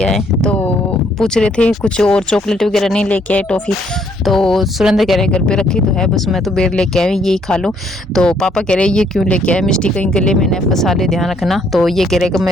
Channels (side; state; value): both; normal; correlation 0.68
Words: आए, तो पूछ रहे थे कुछ और चॉकलेट वगैरह नहीं लेके आए, टॉफी। तो सुरेंद्र कह रहे घर पे रखी तो है, बस मैं तो बेर लेके आई, यही खा लो। तो पापा कह रहे ये क्यों लेके आए, मिस्टी कहीं गले में न फंसा ले, ध्यान रखना। तो ये कह रहे कि मैं